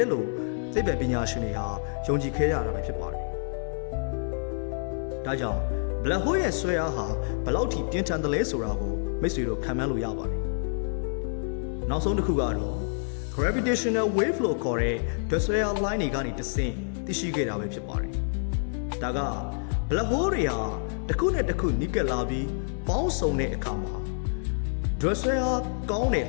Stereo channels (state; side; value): silent; right; digital silence